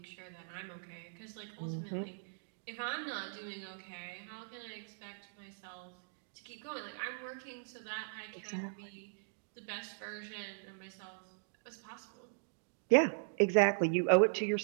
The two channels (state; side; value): silent; left; digital silence